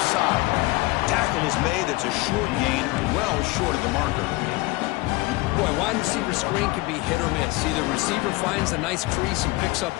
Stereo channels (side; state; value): right; quieter; 22.2 dB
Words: side. Tackle is made. It's a short gain, well short of the marker. Boy, wide receiver screen can be hit or miss. Either receiver finds a nice crease and picks up